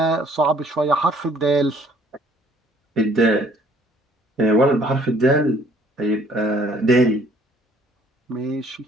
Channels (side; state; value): both; normal; correlation 0.58